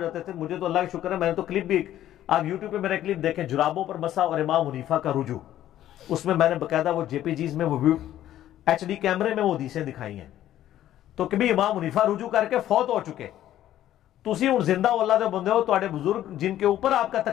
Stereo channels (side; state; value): right; quieter; 12.5 dB